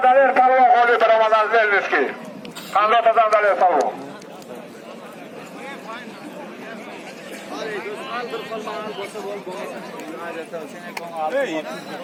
Daler Palvon holi baromadan Zelniski. Kandotadan Daler Palvon.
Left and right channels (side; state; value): both; identical; correlation 1.00